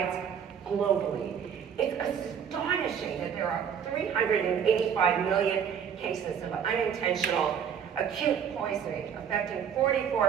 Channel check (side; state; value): left; quieter; 7.8 dB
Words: globally. It's astonishing that there are 385 million cases of unintentional acute poisoning affecting